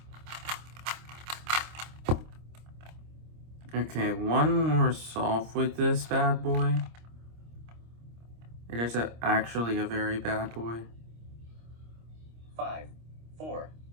Okay, one more solve with this bad boy. It is actually a very bad boy. 5, 4,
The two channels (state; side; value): late; left; 26 ms